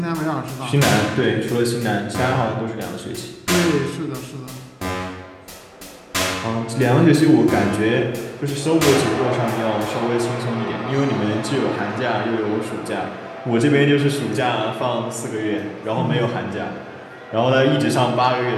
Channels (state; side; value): identical; both; correlation 1.00